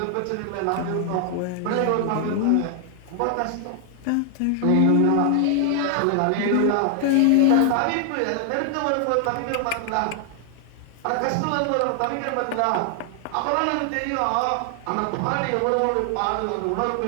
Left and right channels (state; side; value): different; both; correlation 0.00